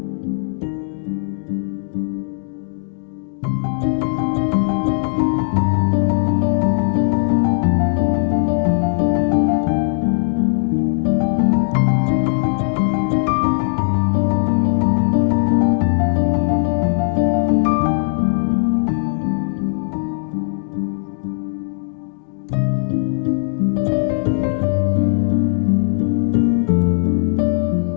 ఆ టైంలో మనం మన కార్ని కూడా ఛార్జ్ ఎలా చేసుకోవచ్చో చూపిస్తాను. సో సూపర్ ఛార్జింగ్తో కాకుండా ఇలా మనం కార్ చేసుకోవడం వల్ల మన కార్కి కూడా బ్యాటరీ పర్ఫార్మెన్స్ అనేది ఇంప్రూవ్ అవుతాం. సో ఇప్పుడు యాజ్ ఆఫ్ నేను షాస్కి వచ్చాను, అక్కడ షాపింగ్ చేస్తా. సో అక్కడ ఆ కాంప్లెక్స్లో మనకి ఇలా ఛార్జ్ పాయింట్ అనే యాప్ వాళ్ళవి మనకి ఇలా పవర్ స్టేషన్స్ ఉంటాయి. సో అక్కడికి వెళ్ళి మనం మన క్రెడెన్షియల్స్తో లాగిన్ అయ్యి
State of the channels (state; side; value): silent; right; digital silence